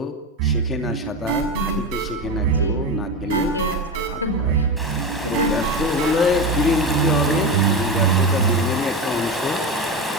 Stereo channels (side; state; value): both; normal; correlation 0.20